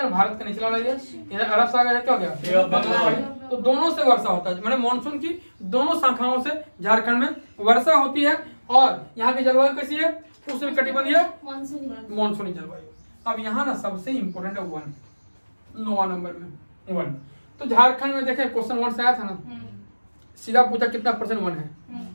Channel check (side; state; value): both; inverted; correlation -1.00